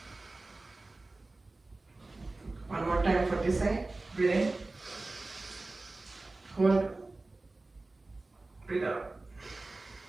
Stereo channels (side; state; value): left; quieter; 3.1 dB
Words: 5. One more time for this side. Breathe in. Hold. Breathe out.